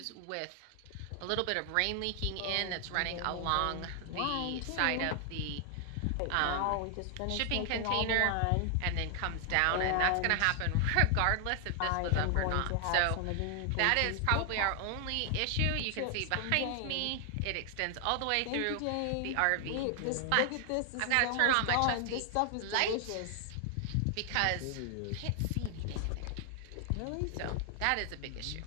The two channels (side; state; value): both; different; correlation 0.00